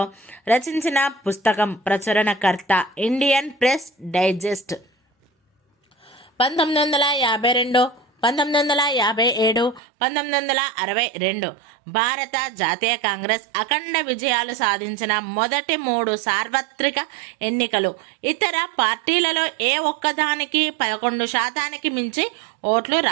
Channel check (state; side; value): drops out; left; at 9.8 s